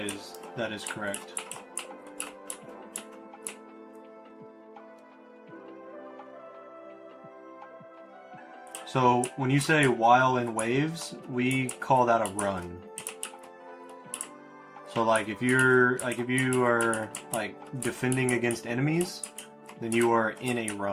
correct. So when you say while in waves, we call that a run. So like if you are like defending against enemies, then you are in a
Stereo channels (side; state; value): both; identical; correlation 1.00